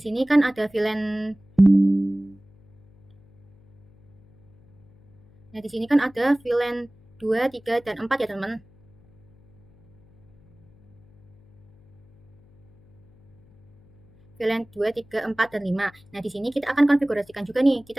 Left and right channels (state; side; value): noise; left; hum, 29 dB below the sound